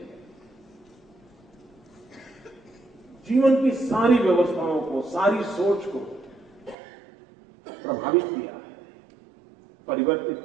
जीवन की सारी व्यवस्थाओं को, सारी सोच को प्रभावित किया है, परिवर्तित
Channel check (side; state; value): left; drops out; at 6.8 s